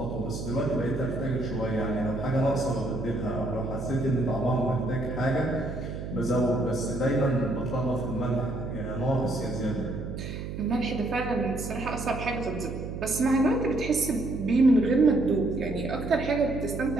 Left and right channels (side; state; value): right; noise; hum, 7 dB below the sound